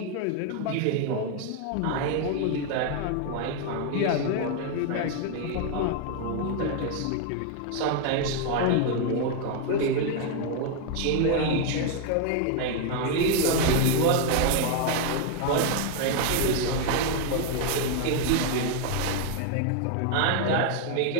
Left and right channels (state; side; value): different; both; correlation 0.01